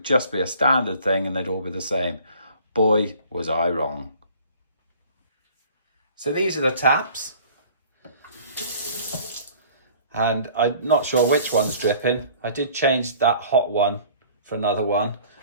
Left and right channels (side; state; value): both; inverted; correlation -0.51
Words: just be a standard thing and they'd all be the same. Boy, was I wrong. So these are the taps. And I'm not sure which one's dripping. I did change that hot one for another one,